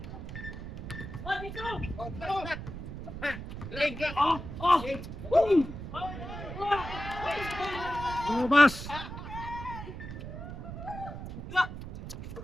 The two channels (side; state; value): right; noise; rumble, 9 dB below the sound